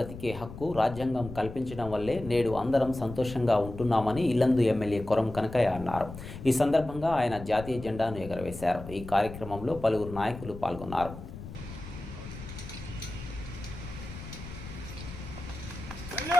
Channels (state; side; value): noise; left; rumble, 12 dB below the sound